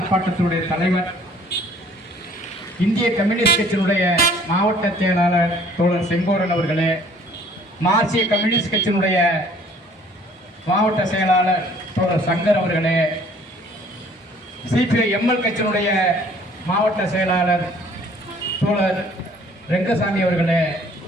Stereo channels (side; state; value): both; normal; correlation 0.56